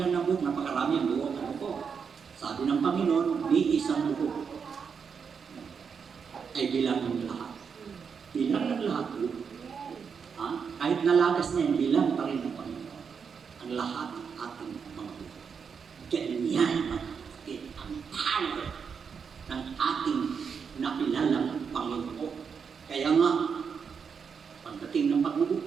na buhok, napakarami ang buhok. Ano po? Sabi ng Panginoon, ni isang buhok ay bilang ng lahat. Bilang ng lahat po. Kahit nalagas niya, bilang pa rin ng Panginoon. Ang lahat ng ating mga buhok. Ganyan mga kapatid, ang power ng ating nakilalang Panginoon. Kaya nga, pagdating ng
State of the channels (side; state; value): left; quieter; 6.3 dB